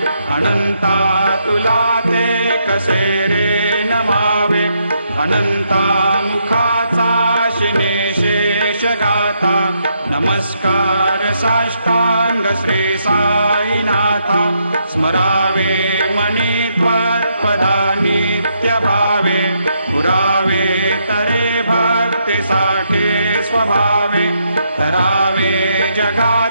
अनंता तुला ते कसे रे नमावे, अनंता मुखाचा शिने शेष गाता, नमस्कार साष्टांग श्री साईनाथा, स्मरावे मनी त्वत्पदा नित्य भावे, पुरावे तरे भक्ति साठे स्वभावे, तरावे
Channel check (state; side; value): inverted; both; correlation -0.77